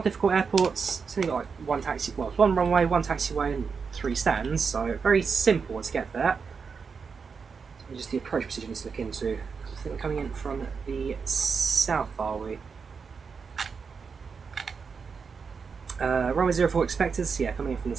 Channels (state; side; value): quieter; left; 5.5 dB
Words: a difficult airport, it's only got like one taxi, well, it's one runway, one taxiway, and 3 stands, so very simple to get there. So just the approach procedure needs to look into. I think we're coming in from the south, are we? Runway 04 expected, so yeah, coming in from the